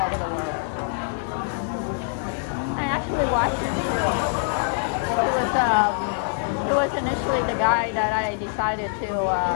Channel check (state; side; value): silent; right; digital silence